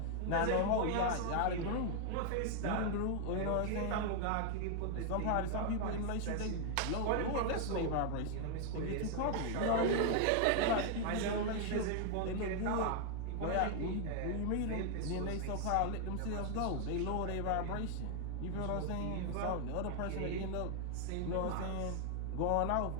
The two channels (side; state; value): both; different; correlation 0.00